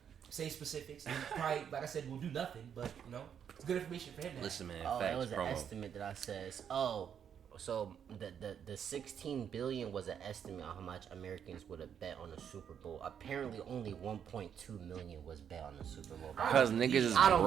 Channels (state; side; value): quieter; left; 8.3 dB